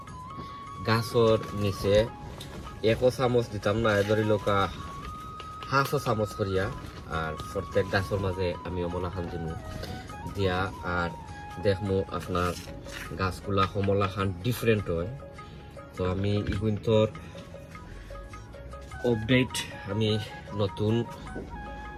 গাছর নিচে 1 চামচ দিতাম না, ধরি লোকা 1/2 চামচ করিয়া। আর প্রত্যেক গাছের মাঝে আমি কমলা খান দিমু দিয়া। আর দেখমু আপনার গাছগুলা কমলা খান ডিফারেন্ট হয়। তো আমি ইগুন্তর আপডেট আমি নতুন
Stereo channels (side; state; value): both; identical; correlation 1.00